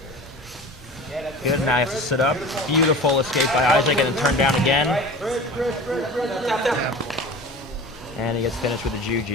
Good, now he has to sit up. Beautiful escape by Isaac and then turn down again. And he gets finished with a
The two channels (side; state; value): both; normal; correlation 0.36